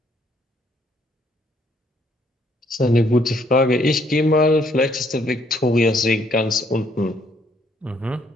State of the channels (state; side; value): normal; both; correlation 0.68